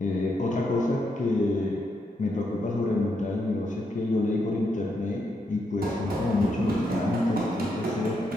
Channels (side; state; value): both; normal; correlation 0.80